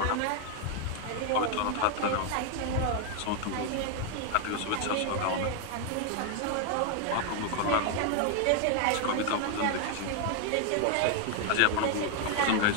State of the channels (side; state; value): both; different; correlation 0.01